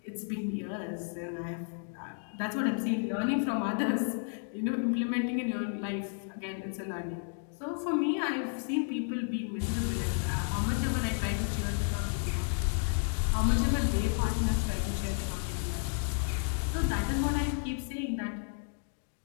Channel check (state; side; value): silent; right; 56 dB below the other